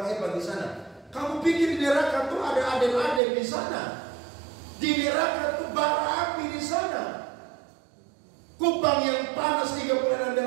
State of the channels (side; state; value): left; drops out; at 3.2 s